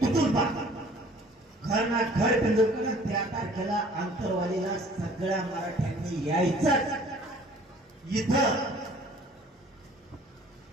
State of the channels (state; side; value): normal; both; correlation 0.52